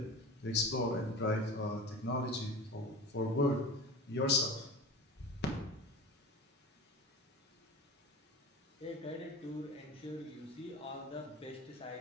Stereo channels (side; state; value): both; normal; correlation 0.33